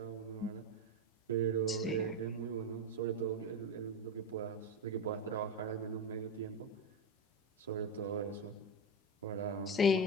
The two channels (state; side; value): normal; both; correlation 0.16